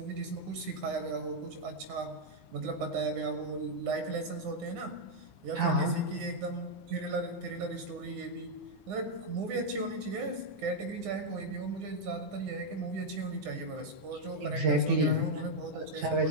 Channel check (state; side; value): late; left; 9.7 ms